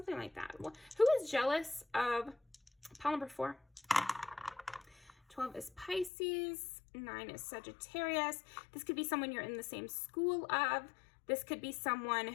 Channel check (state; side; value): drops out; right; at 6.1 s